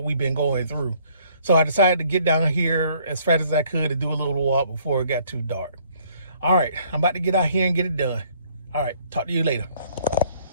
we've been going through. So I decided to get down here as fast as I could and do a little walk before it got too dark. All right, I'm about to get out here and get it done. All right, talk to you later.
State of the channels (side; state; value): both; inverted; correlation -0.62